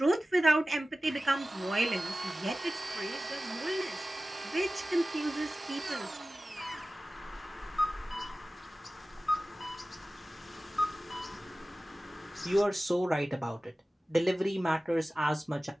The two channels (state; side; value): normal; both; correlation 0.96